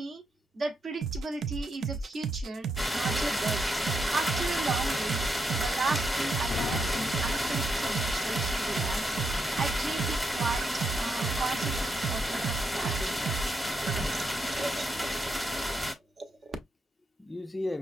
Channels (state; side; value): normal; both; correlation 0.82